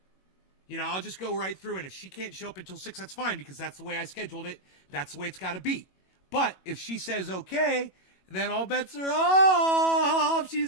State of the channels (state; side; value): late; right; 21 ms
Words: You know, I'll just go right through, and if she can't show up until 6, that's fine, because that's the way I scheduled it. That's the way it's got to be. But if she says okay, then all bets are off.